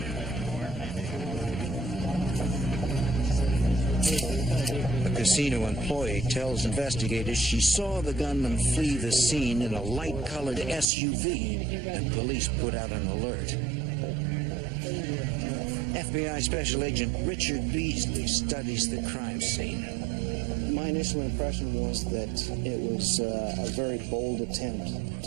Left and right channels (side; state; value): left; drops out; at 10.9 s